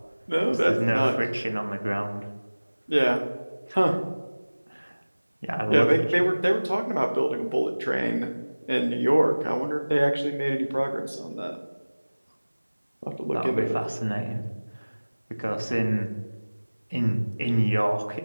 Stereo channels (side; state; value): both; inverted; correlation -1.00